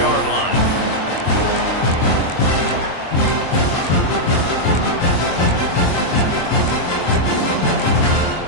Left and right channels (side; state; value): right; late; 23 ms